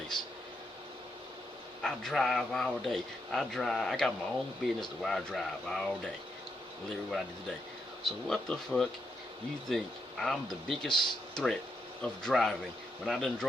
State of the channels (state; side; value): normal; both; correlation 0.81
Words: I drive all day. I got my own business to where I drive all day. Literally what I did today. So what the fuck you think I'm the biggest threat of driving when I done